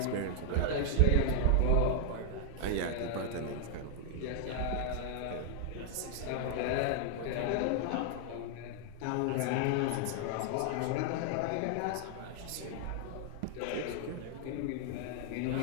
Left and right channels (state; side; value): different; both; correlation 0.00